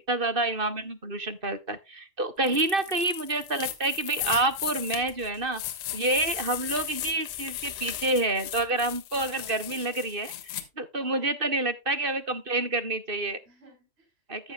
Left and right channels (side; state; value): left; late; 1.9 ms